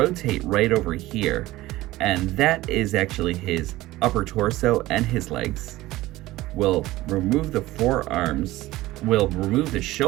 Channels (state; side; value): quieter; left; 17.5 dB